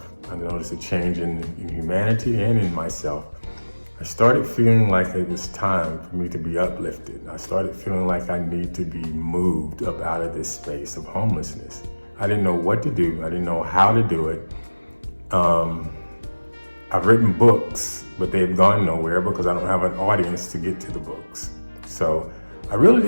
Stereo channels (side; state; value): both; inverted; correlation -1.00